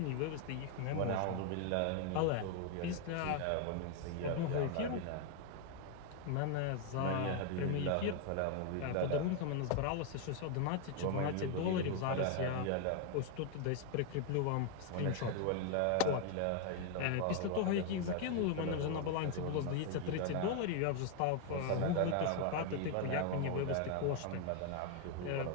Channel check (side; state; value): both; different; correlation 0.01